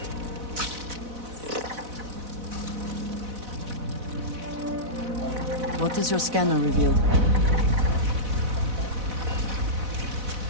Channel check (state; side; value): late; left; 4.0 ms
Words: What does your scanner reveal?